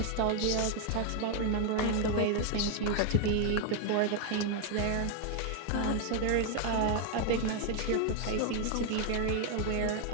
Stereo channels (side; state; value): both; different; correlation 0.01